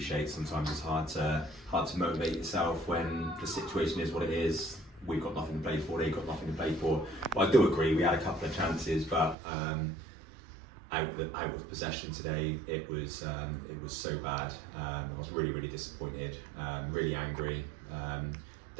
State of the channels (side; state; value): left; drops out; at 9.3 s